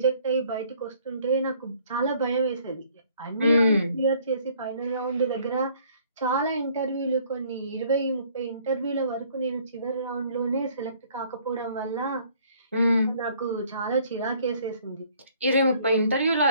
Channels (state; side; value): inverted; both; correlation -0.60